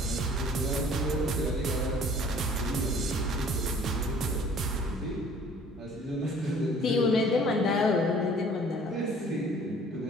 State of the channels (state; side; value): normal; both; correlation 0.53